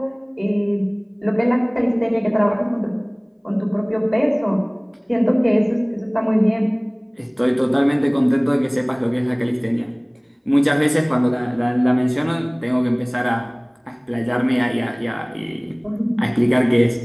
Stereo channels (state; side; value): identical; both; correlation 1.00